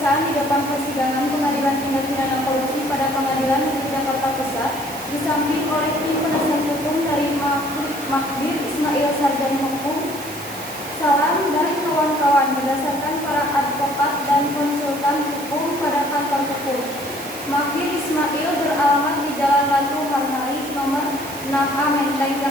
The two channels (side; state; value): right; noise; hiss, 14 dB below the sound